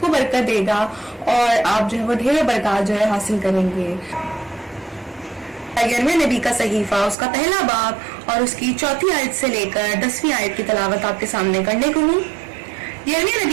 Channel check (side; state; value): left; drops out; at 7.2 s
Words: बरकत देगा और आप जो है वो ढेर बरकत जो है हासिल करेंगे। यिर्मयाह नबी का सहीफा उसका पहला बाब और उसकी 4 आयत से लेकर 10वीं आयत की तिलावत आपके सामने करने को हूँ। यिर्मयाह